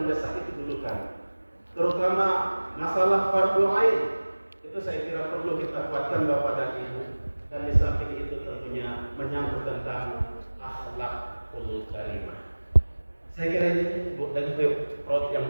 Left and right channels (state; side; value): inverted; both; correlation -1.00